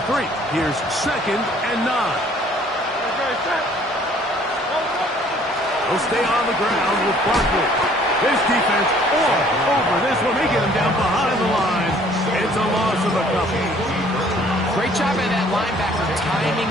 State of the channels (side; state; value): both; normal; correlation 0.57